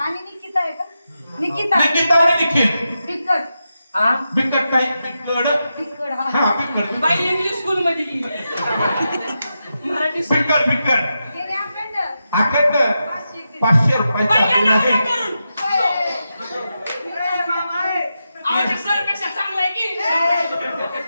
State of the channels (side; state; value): both; inverted; correlation -0.88